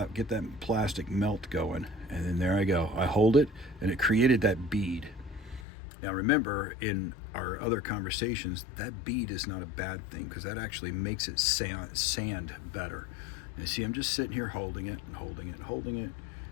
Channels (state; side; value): drops out; right; at 5.7 s